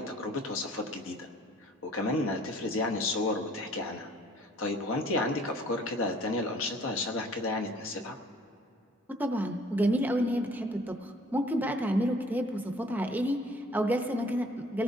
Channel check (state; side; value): normal; both; correlation 0.55